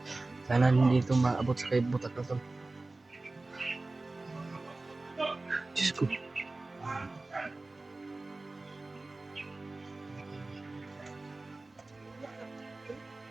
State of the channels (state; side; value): quieter; left; 3.2 dB